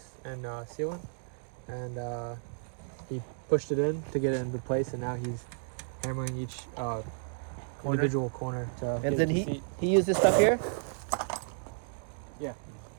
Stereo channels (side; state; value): left; silent; digital silence